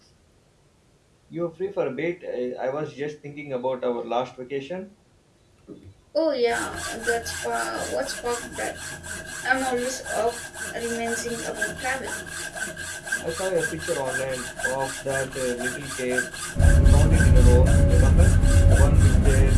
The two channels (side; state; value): both; identical; correlation 1.00